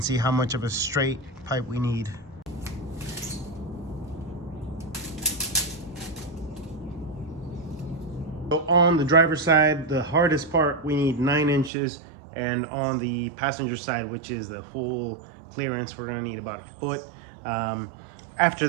see how much of a straight pipe we need. So on the driver's side, the hardest part, we need 9 inches, and on the passenger side, which is the full clearance, we're gonna need about a foot. After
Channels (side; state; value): left; drops out; at 11.7 s